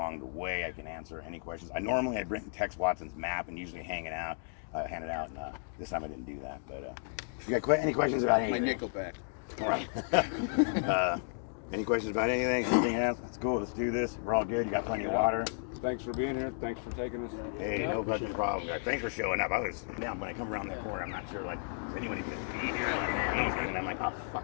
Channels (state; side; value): silent; right; digital silence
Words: the way, I can answer any questions. I bring Tex Watson's map and usually hand it out. And this time I didn't do that. But you got any questions about anything? My Nickelback. All right. Any questions about anything? Anything else? Let's go. Let's do this. We're all good. You got plenty of water. Thanks for being here. Thanks for taking us. Hey, no fucking problem, guys. Thanks for showing up. Now when I come around that corner, I'm not sure, like, is anyone even going to be here? Like, man, no one's gonna, and I'm like, oh,